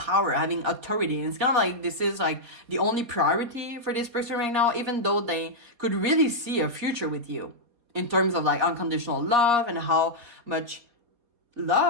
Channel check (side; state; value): left; late; 4.2 ms